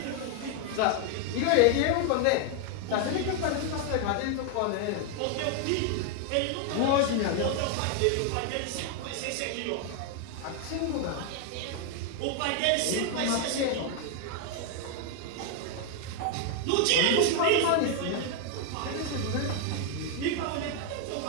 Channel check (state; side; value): different; both; correlation 0.00